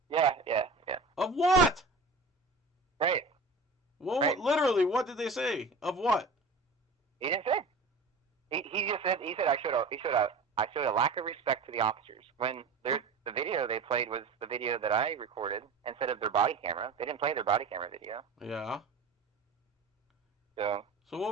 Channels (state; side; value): quieter; left; 3.8 dB